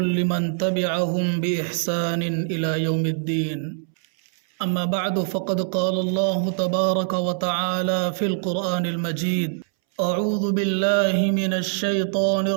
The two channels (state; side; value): silent; left; 63 dB below the other